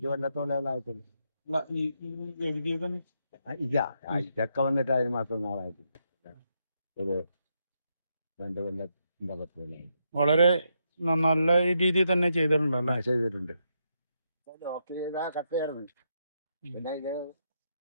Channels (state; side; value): inverted; both; correlation -0.80